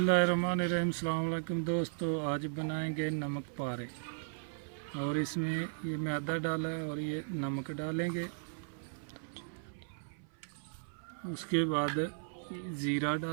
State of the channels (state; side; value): silent; left; 54 dB below the other